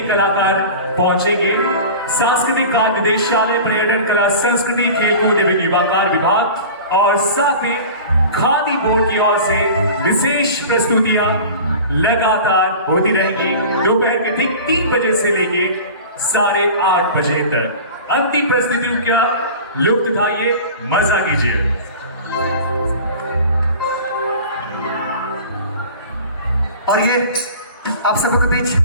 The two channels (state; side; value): inverted; both; correlation -0.37